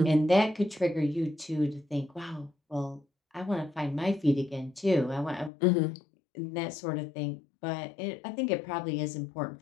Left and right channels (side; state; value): right; drops out; at 5.5 s